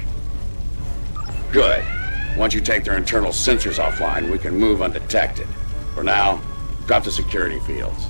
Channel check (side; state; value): both; inverted; correlation -1.00